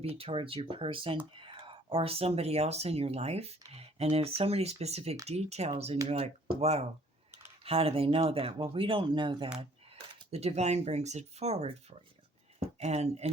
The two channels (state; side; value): normal; both; correlation 0.59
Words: be towards your person or somebody else in your life. And there's so many specific details and you're like, wow, how do they know that? Well, we don't know that. The divine brings it forward for you.